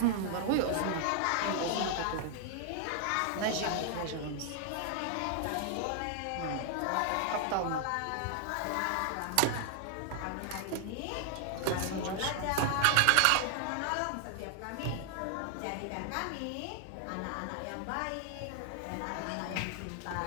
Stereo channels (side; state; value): both; different; correlation 0.00